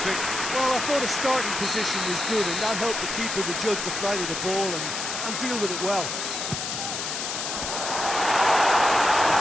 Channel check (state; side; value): noise; left; hiss, 4 dB below the sound